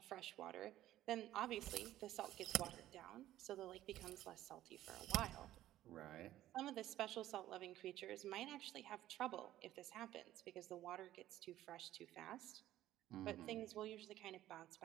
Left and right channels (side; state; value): left; quieter; 13.8 dB